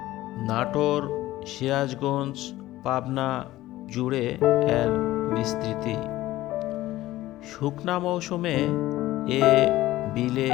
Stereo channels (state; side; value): quieter; right; 16.1 dB